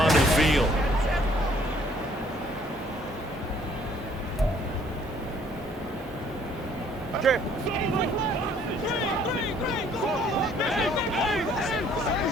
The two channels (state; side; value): normal; both; correlation 0.61